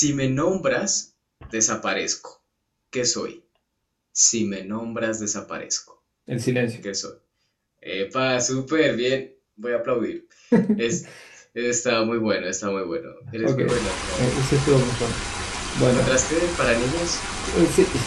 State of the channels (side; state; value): both; identical; correlation 1.00